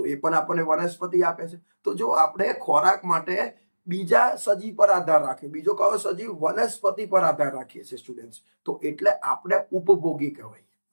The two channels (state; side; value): inverted; both; correlation -1.00